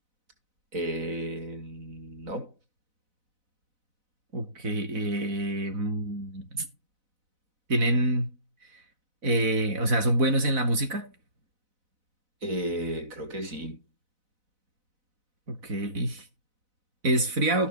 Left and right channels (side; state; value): left; late; 4.0 ms